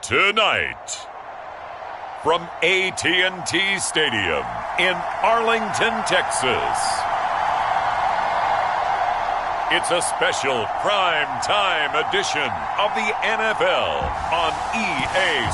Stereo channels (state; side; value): identical; both; correlation 1.00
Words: Tonight, from AT&T Stadium in Arlington, Texas, it's a special prime time edition of the NFL on EA